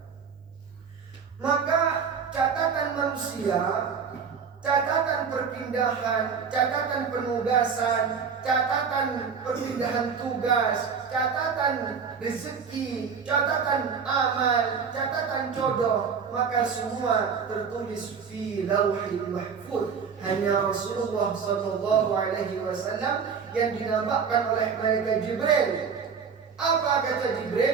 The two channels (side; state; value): left; quieter; 6.2 dB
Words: Maka catatan manusia, catatan perpindahan, catatan penugasan, catatan perpindahan tugas, catatan rezeki, catatan amal, catatan jodoh, maka semua tertulis fi Lauhil Mahfuz. Hanya Rasulullah SAW yang dinamakan oleh malaikat Jibril. Apa kata